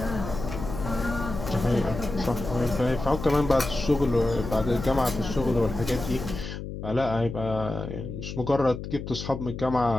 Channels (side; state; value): left; noise; hum, 8 dB below the sound